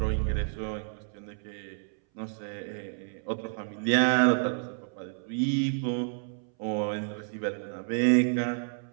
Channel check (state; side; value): silent; left; 58 dB below the other